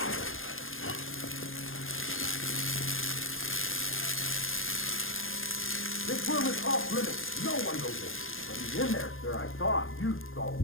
This room is off limits. No one goes in. But he's in there, sir. I saw him. You saw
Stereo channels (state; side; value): late; right; 0.59 ms